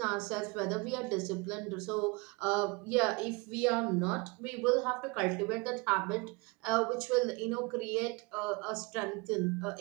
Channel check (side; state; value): left; quieter; 28.1 dB